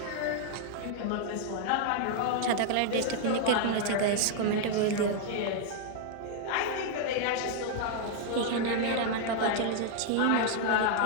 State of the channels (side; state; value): both; different; correlation 0.00